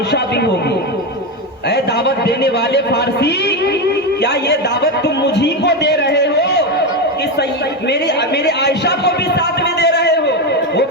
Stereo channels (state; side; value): normal; both; correlation 0.12